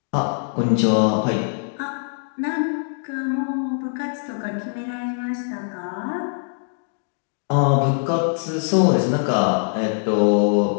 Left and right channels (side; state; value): right; silent; 64 dB below the other